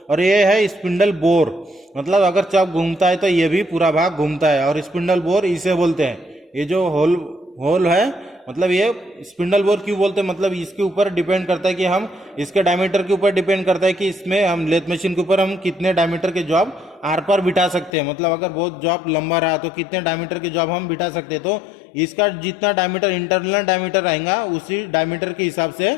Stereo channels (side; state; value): right; drops out; at 17.9 s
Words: और ये है स्पिंडल बोर। मतलब अगर चक घूमता है तो ये भी पूरा भाग घूमता है, और स्पिंडल बोर इसे बोलते हैं। ये जो होल है, मतलब ये स्पिंडल बोर क्यों बोलते हैं, मतलब इसके ऊपर डिपेंड करता है कि हम इसके डायमीटर के ऊपर डिपेंड करता है कि इसमें हम लेथ मशीन के ऊपर हम कितने डायमीटर के जॉब आर पार बिठा सकते हैं। मतलब अगर बहुत जॉब लंबा रहा तो कितने डायमीटर के जॉब हम बिठा सकते हैं, तो इसका जितना डायमीटर इंटरनल डायमीटर रहेगा उसी डायमीटर के हिसाब से